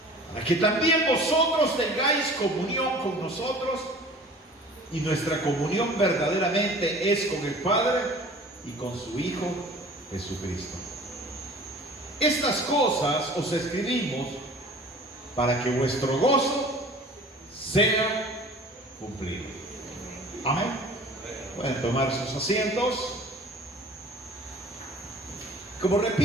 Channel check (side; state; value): both; normal; correlation 0.45